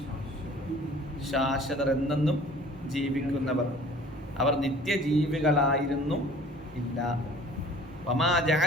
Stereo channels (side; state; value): both; normal; correlation 0.49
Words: ശാശ്വതർ എന്നെന്നും ജീവിക്കുന്നവർ, അവർ നിത്യജീവികളായിരുന്നു ഇല്ല. വമാ